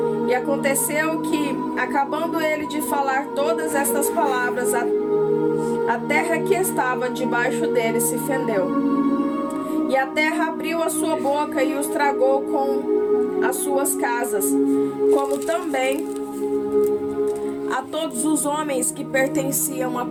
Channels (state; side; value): identical; both; correlation 1.00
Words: E aconteceu que, acabando ele de falar todas estas palavras, a terra que estava debaixo dele se fendeu. E a terra abriu a sua boca e os tragou com as suas casas, como também a todos os homens que pertenciam a